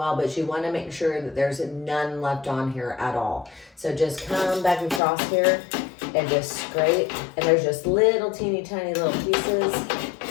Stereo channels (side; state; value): right; drops out; at 5.0 s